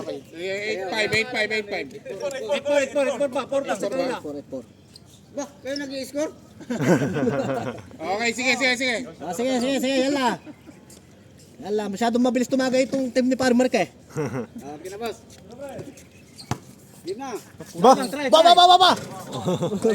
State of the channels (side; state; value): both; identical; correlation 1.00